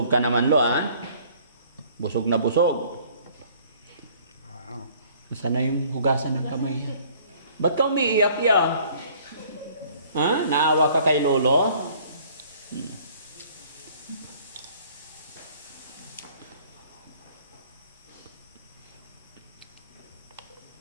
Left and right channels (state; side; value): inverted; both; correlation -0.56